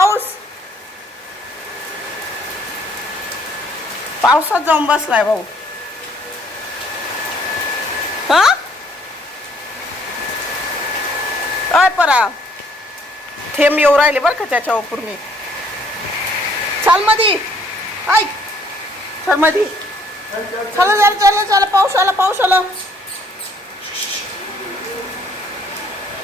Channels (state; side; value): normal; both; correlation 0.63